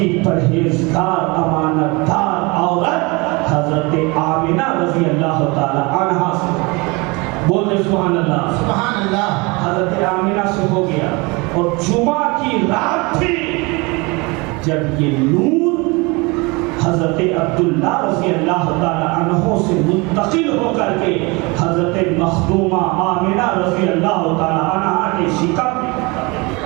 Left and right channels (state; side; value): quieter; left; 26.6 dB